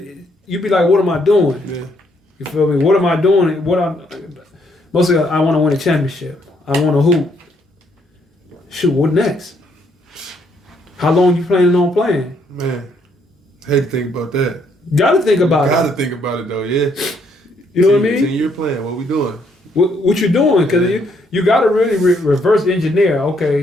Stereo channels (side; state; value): both; normal; correlation 0.71